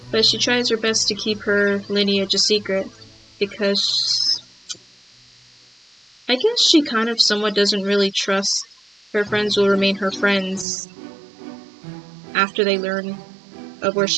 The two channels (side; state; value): left; drops out; at 10.7 s